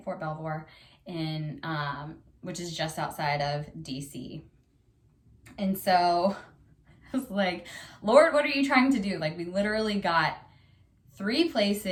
Fort Belvoir, in which is just outside of DC. And so I was like, Lord, what are you trying to do? Like, we literally got 3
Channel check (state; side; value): identical; both; correlation 1.00